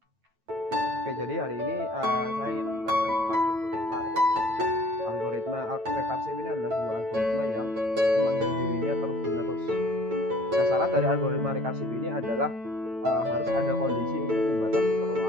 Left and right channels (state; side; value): late; left; 9.0 ms